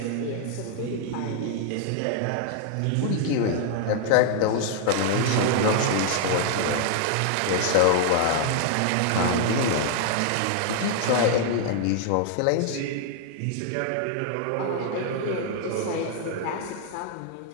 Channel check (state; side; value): different; both; correlation 0.00